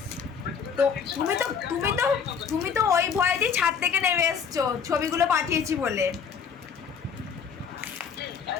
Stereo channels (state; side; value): quieter; right; 6.7 dB